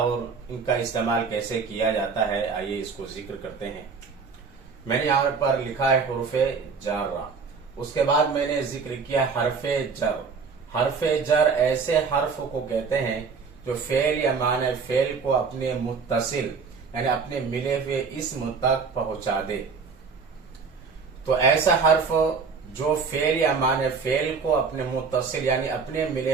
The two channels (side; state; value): left; quieter; 5.2 dB